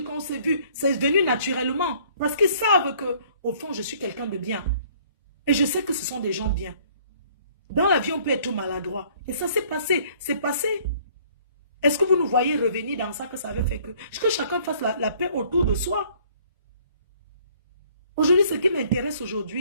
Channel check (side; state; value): both; inverted; correlation -0.58